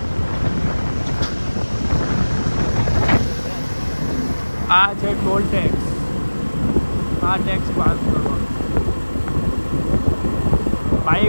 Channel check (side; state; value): both; inverted; correlation -1.00